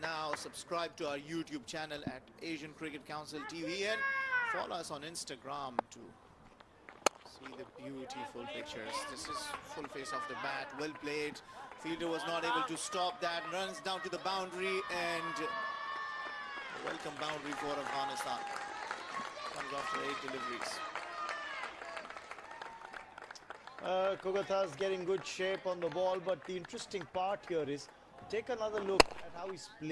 now. Subscribe to our YouTube channel at Asian Cricket Council TV and follow us on Instagram to see the beautiful pictures. This is full face off the bat, well played. Fielder was not able to stop that. Runs down to the boundary and a welcome boundary for Afghanistan. Comes after 8 deliveries. Kogata's getting good shape on the ball, but the interesting part here is take another look at how he's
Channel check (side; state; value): both; identical; correlation 1.00